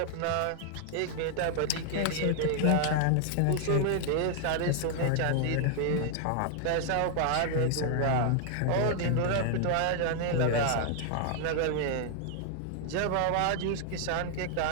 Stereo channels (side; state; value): both; different; correlation 0.00